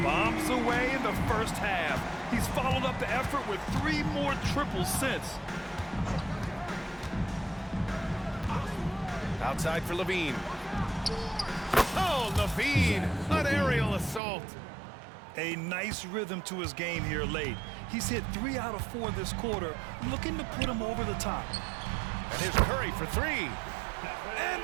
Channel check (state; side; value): drops out; left; at 14.2 s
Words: Bombs away in the first half. He's followed up the effort with 3 more triples since. Outside for LaVine. Oh, LaVine, an aerial assault. A nice rhythm to his game here late. He's hit 3 out of 4 this quarter, looking to put him over the top. And here's Curry for 3. And